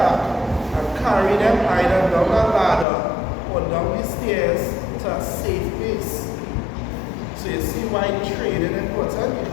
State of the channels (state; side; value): drops out; right; at 2.9 s